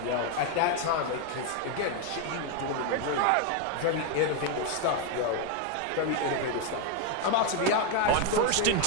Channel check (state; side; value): different; both; correlation 0.01